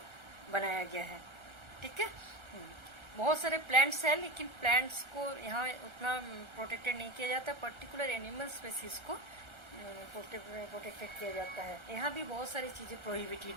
बनाया गया है। ठीक है, बहुत सारे प्लांट्स हैं लेकिन प्लांट्स को यहाँ उतना प्रोटेक्टेड नहीं किया जाता, पर्टिकुलर एनिमल स्पेसीज को प्रोटेक्टेड किया जाता है। यहाँ भी बहुत सारी चीजें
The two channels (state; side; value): late; left; 1.3 ms